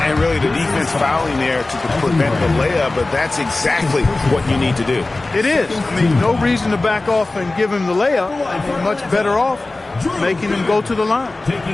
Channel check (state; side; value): quieter; right; 3.1 dB